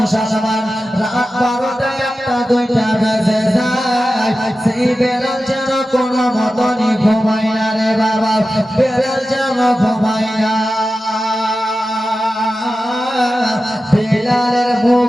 রাত 12টা 1টা 2টা বেজে যায় সেই বেলাল যেন কোনো মতনই ঘুমায় না রে বাবা বেলাল যেন ঘুমায় না বেলালের মুখ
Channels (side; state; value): both; normal; correlation 0.93